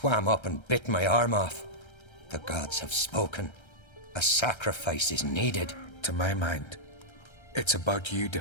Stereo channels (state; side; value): late; right; 1.3 ms